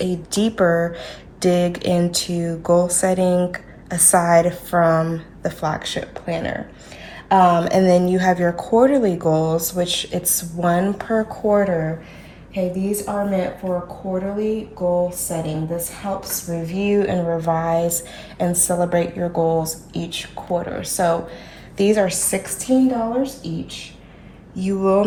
deeper dig into goal setting aside from the flagship planner. And then you have your quarterly goals, which it's 1 per quarter. Okay, these are meant for quarterly goal setting. This helps review and revise and celebrate your goals each quarter. So these are $16 each. You will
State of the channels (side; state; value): both; identical; correlation 1.00